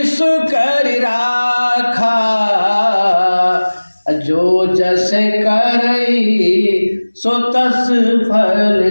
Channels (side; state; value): both; inverted; correlation -1.00